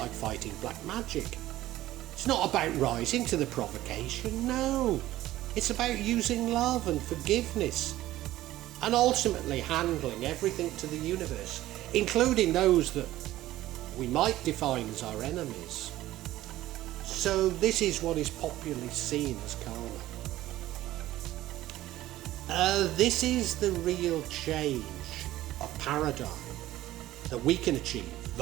fighting black magic. It's not about rising to the provocation, no. It's about using love and forgiveness and ultimately handling everything to the universe, including those that we might define as our enemies. So this is what is popularly seen as karma. This is the real change of paradigm that we can achieve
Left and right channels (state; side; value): quieter; left; 15.2 dB